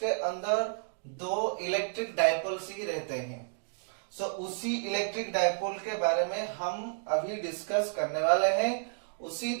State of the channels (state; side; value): silent; left; digital silence